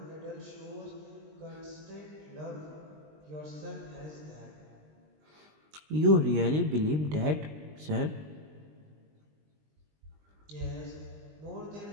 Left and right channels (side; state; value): left; late; 20 ms